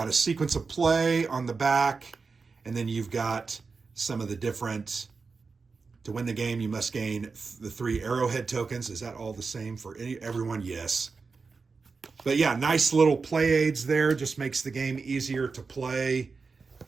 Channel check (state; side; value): quieter; left; 4.6 dB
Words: a sequence of play on the back, and then you've got some of the different, to win the game, you must gain the 3 arrowhead tokens. Is that all the same for everyone? Yes. But yeah, nice little play aids there. Just makes the game easier to play.